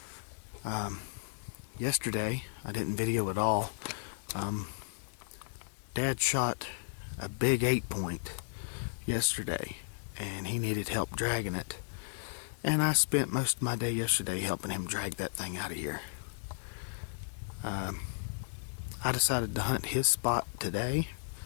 Yesterday, I didn't video at all. Dad shot a big 8-point yesterday and he needed help dragging it, and I spent most of my day yesterday helping him drag that thing out of here. I decided to hunt his spot today.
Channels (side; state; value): right; silent; digital silence